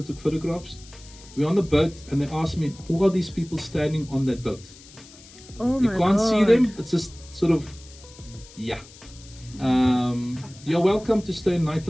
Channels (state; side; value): noise; left; hiss, 21 dB below the sound